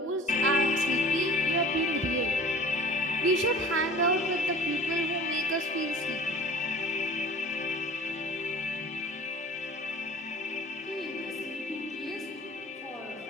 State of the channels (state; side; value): normal; both; correlation 0.43